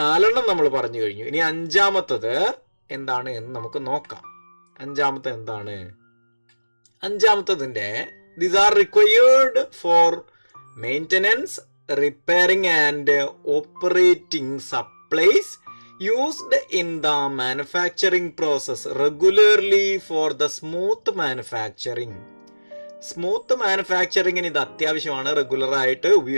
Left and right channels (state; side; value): inverted; both; correlation -1.00